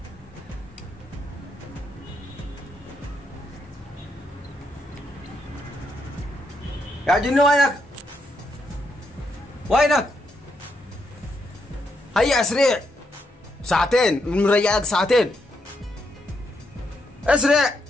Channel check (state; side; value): normal; both; correlation 0.79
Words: يا جني وينك هيا اسرع ساعتين من رجعك ساعتين اسرع